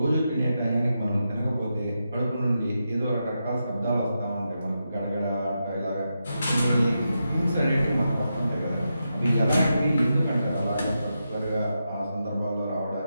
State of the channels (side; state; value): both; inverted; correlation -0.87